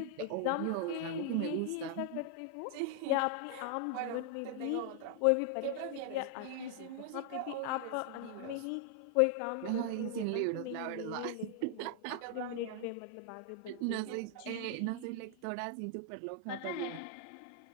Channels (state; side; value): different; both; correlation 0.00